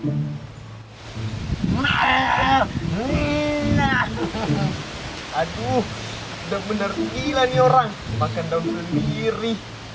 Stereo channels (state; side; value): identical; both; correlation 1.00